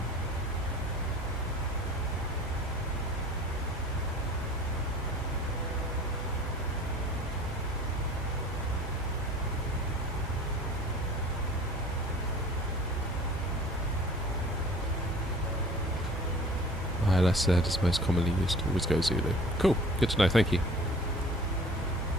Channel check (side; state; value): both; normal; correlation 0.45